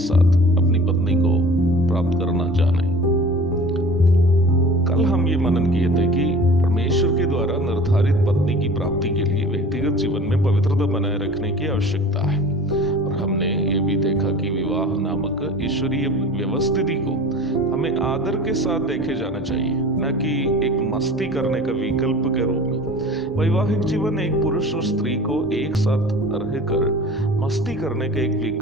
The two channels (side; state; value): both; normal; correlation 0.41